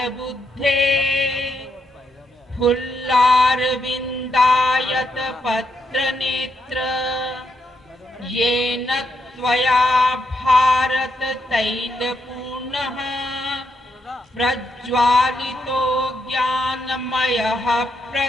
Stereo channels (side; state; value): both; normal; correlation 0.79